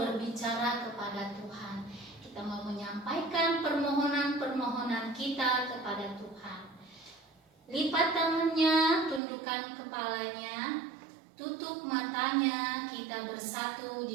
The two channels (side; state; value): left; drops out; at 9.2 s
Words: kepada Tuhan. Kita mau menyampaikan permohonan-permohonan kita kepada Tuhan. Lipat tangannya, tundukkan kepalanya, tutup matanya, kita bersatu